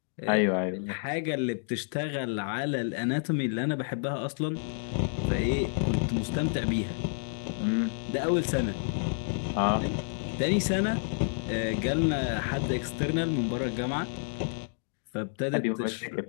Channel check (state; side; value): silent; right; digital silence